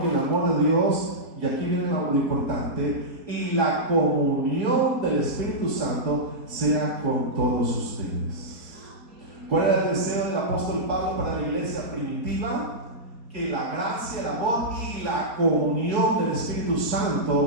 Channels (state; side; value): late; left; 4.0 ms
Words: y el amor de Dios, y aquí viene lo importante, y la comunión del Espíritu Santo sea con todos ustedes. ¿Cuál era el deseo del apóstol Pablo para la iglesia primitiva? Que la gracia, el amor y la comunión del Espíritu